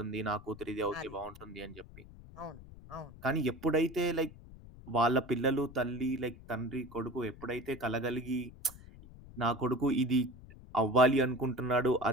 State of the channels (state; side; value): noise; left; rumble, 18 dB below the sound